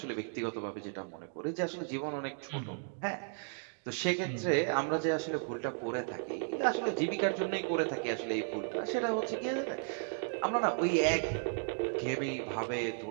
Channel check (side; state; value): left; silent; 55 dB below the other